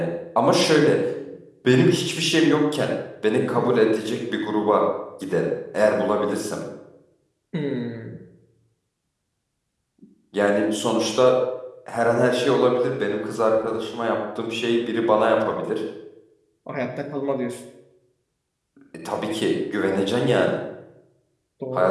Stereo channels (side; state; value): both; identical; correlation 1.00